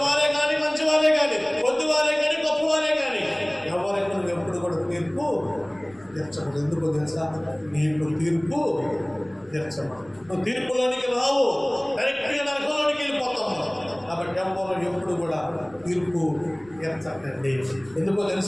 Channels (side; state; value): left; noise; rumble, 27 dB below the sound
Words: కానీ, మంచివారే కానీ, కొద్దివారే కానీ, గొప్పవారే కానీ, ఎవరికి నువ్వు ఎప్పుడు కూడా తీర్పు తీర్చకూడదు. ఎందుకో తెలుసా? నీకు తీర్పు తీర్చమా. నువ్వు తీర్పులోనికి రావు, డైరెక్ట్గా నరకంలోనికి వెళ్ళిపోతాము. కాబట్టి ఎవరు ఎప్పుడు కూడా తీర్పు తీర్చకండి. ఎందుకో